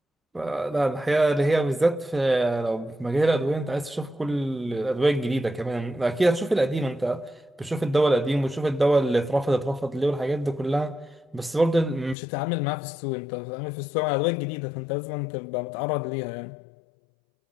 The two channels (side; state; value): right; drops out; at 12.2 s